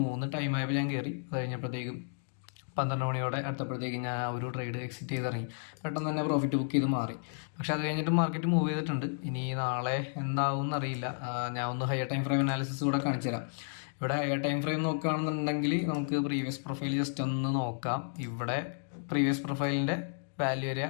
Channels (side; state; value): right; silent; digital silence